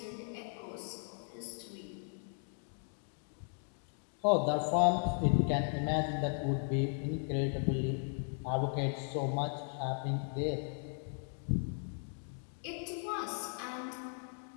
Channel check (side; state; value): right; silent; 53 dB below the other